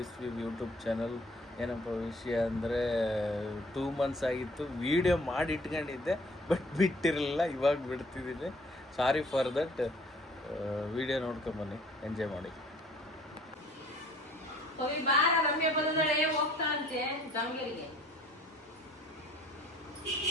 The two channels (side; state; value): both; normal; correlation 0.55